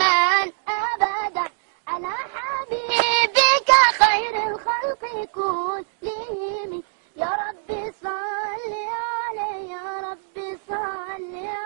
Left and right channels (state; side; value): silent; left; digital silence